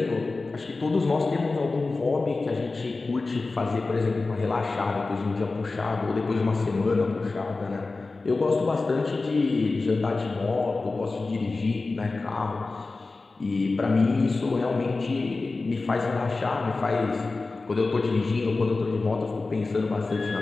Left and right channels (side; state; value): right; quieter; 3.6 dB